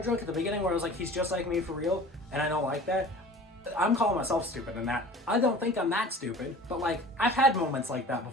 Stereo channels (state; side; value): normal; both; correlation 0.42